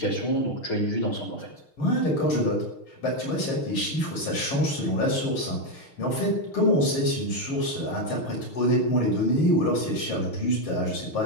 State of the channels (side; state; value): right; late; 6.5 ms